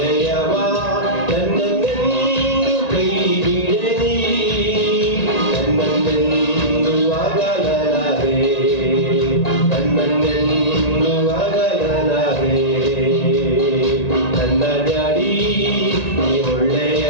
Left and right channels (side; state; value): right; late; 1.9 ms